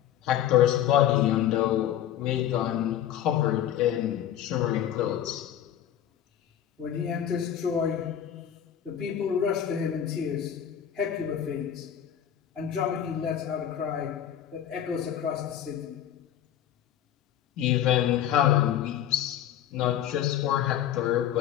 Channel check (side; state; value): right; quieter; 10.6 dB